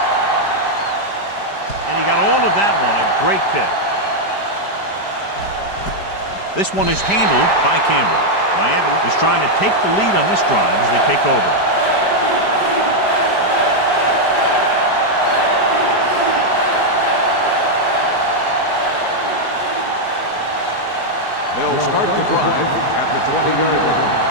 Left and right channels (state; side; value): late; right; 5.0 ms